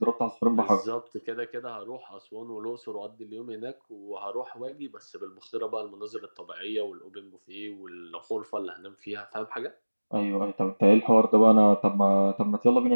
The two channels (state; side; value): inverted; both; correlation -1.00